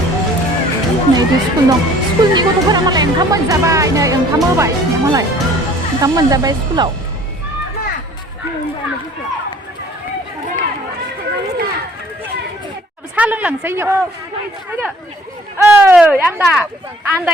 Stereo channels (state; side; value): normal; both; correlation 0.53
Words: Này đi school dong. School ni ko to pernah maleng kamu jabai này, yang kamu baik, yang malai. Kamu jabai school lau. Sao lưng lằng xây dựng? Ăn đã. Ăn